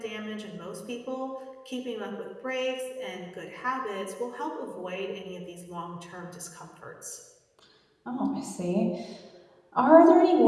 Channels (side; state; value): both; identical; correlation 1.00